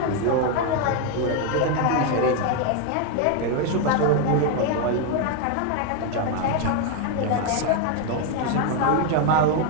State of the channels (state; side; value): different; both; correlation 0.01